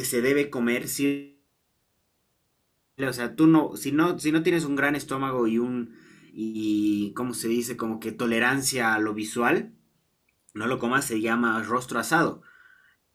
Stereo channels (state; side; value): identical; both; correlation 1.00